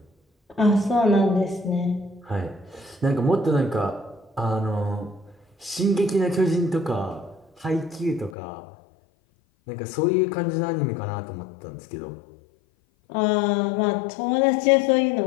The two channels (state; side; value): drops out; right; at 8.3 s